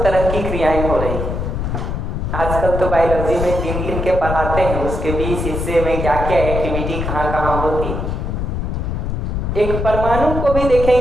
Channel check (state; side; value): noise; left; rumble, 2 dB below the sound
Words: तरह की क्रियाएं हो रही है। आजकल तो बायोलॉजी में गिन गिन के पढ़ाते हैं उसके 20 हिस्से में क्या क्या एक्टिविटी कहाँ कहाँ होती। एक परमाणु को भी